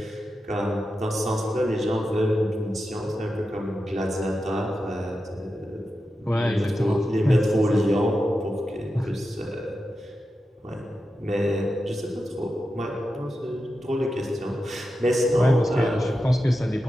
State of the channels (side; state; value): both; normal; correlation 0.90